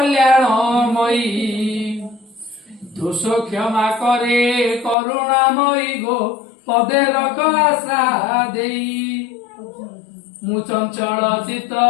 दोष क्षमा करे करुणामयी गो पदे रख आशा देई मु चंचल चित्त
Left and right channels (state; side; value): drops out; right; at 5.0 s